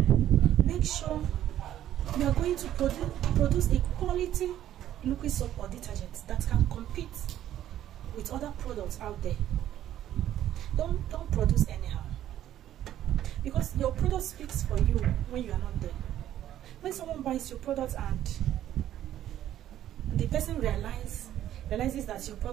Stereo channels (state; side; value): quieter; left; 11.9 dB